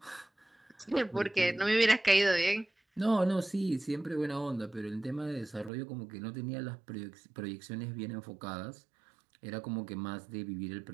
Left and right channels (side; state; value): left; drops out; at 5.7 s